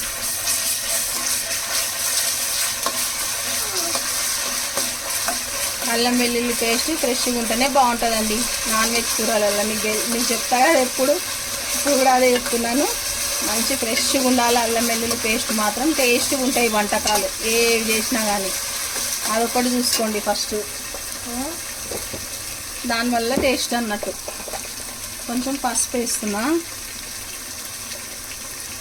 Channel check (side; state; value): both; identical; correlation 1.00